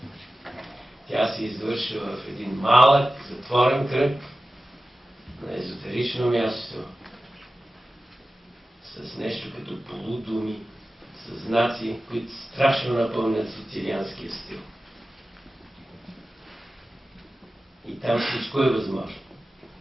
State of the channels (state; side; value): normal; both; correlation 0.95